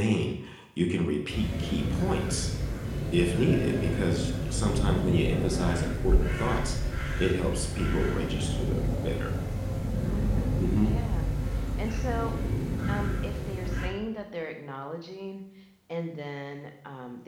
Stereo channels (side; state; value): both; identical; correlation 1.00